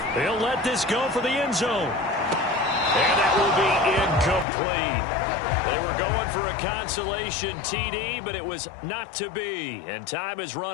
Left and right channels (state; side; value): drops out; right; at 4.5 s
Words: He'll let this go for the end zone. And that will be incomplete. They were going for a consolation TD, but it was not to be. And time has